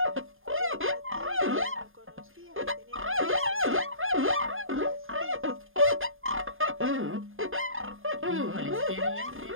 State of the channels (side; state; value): left; late; 0.59 ms